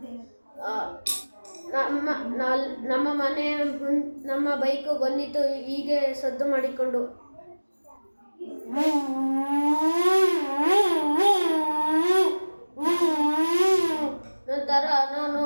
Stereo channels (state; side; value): inverted; both; correlation -1.00